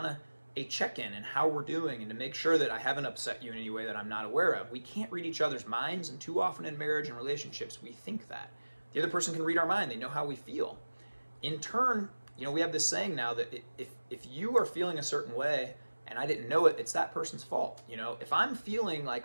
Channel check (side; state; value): both; inverted; correlation -1.00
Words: of a check-in and how we're doing and to make sure that I haven't upset you in any way that I'm not aware of. We can't read each other's minds, and too often in marriage and relationships, we think that. The other person can read our mind. They know how we feel. In turn, we have this saying now that if you are feeling a certain way and I didn't know it, it's that person's fault. If I'm feeling